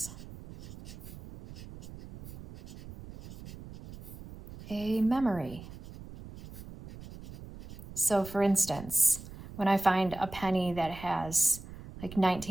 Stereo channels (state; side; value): noise; right; rumble, 15 dB below the sound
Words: a memory. So for instance, when I find a penny that has like